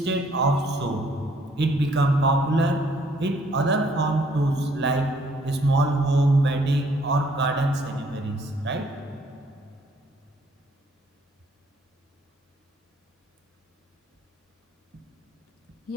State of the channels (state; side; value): normal; both; correlation 0.64